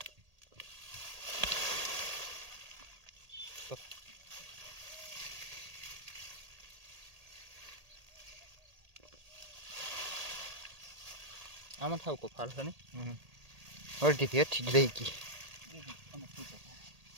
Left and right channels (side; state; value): left; late; 1.8 ms